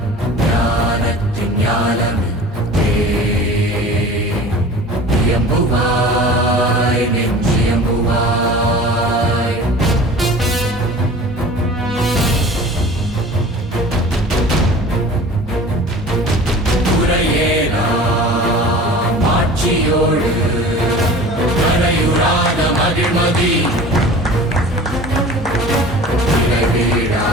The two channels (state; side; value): normal; both; correlation 0.41